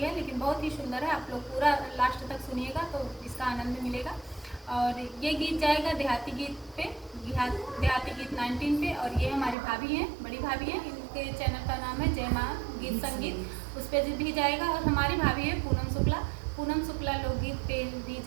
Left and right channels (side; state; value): left; drops out; at 9.6 s